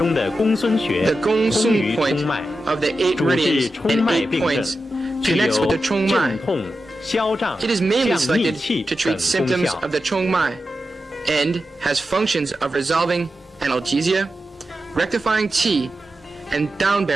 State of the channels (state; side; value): normal; both; correlation 0.90